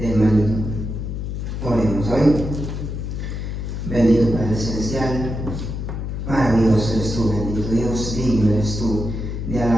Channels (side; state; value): left; noise; hum, 5 dB below the sound